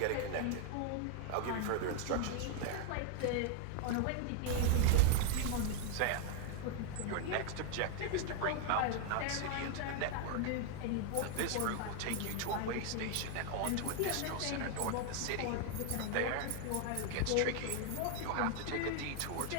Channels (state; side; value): different; both; correlation 0.00